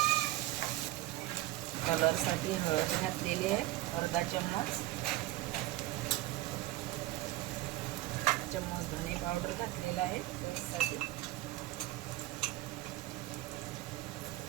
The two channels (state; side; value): quieter; left; 17.1 dB